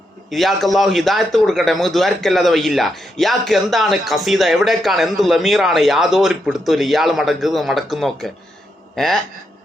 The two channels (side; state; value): both; normal; correlation 0.82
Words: ഇയാൾക്ക് അല്ലാഹു ഹിദായത്ത് കൊടുക്കട്ടെ, നമുക്ക് ദ്വാരക്കല്ലാതെ വയ്യില്ല. ഇയാൾക്ക് എന്താണ് ഖസീദ, എവിടേക്കാണ്, എന്ത് ലമീറാണ്, യാതൊരു പിടുത്തമില്ല. ഇയാൾ മടക്കുന്നൊക്കെ